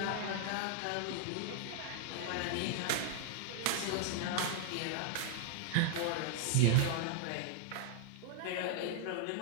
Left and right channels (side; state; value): both; different; correlation -0.01